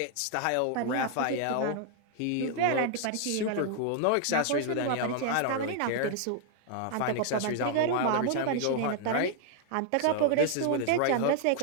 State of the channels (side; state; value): both; different; correlation 0.00